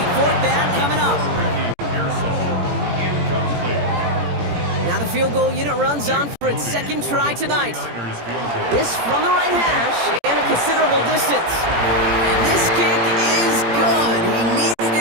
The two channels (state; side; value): late; left; 17 ms